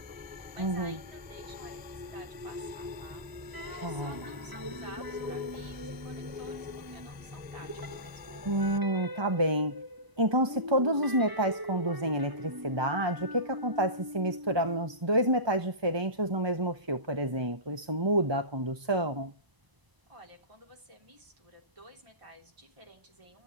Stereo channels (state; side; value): late; left; 1.0 ms